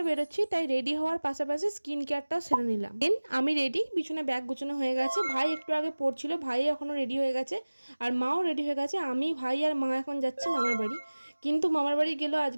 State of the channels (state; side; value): inverted; both; correlation -1.00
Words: বেরোচ্ছি, তাই রেডি হওয়ার পাশাপাশি স্কিন কেয়ারটাও সেরে নিলাম। দেন আমি রেডি, পিছনে ব্যাগ গুছানো হয়ে গেছে। ভাই একটু আগে পড়ছিল, ভাই এখনো রেডি হয়ে গেছে আর মাও রেডি হয়ে গেছে। আমি, ভাই আর মা এখন যাচ্ছি মামার বাড়ি। কিন্তু মামার বাড়ি গেলেও